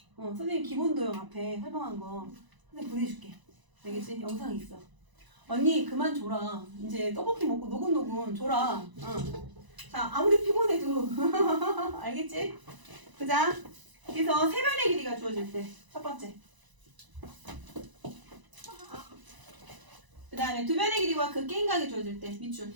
선생님 기본도형 앞에 설명한 거 선생님 보내줄게. 알겠지? 영상이 있어. 언니 그만 줘라. 이제 떡볶이 먹고 노곤노곤 줘라. 자, 아무리 피곤해도 알겠지? 보자. 그래서 세 변의 길이가 주어질 때 첫 번째. 그 다음에 두 변의 길이와 그 끼인각이 주어질 때 밑줄.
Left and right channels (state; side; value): late; left; 1.0 ms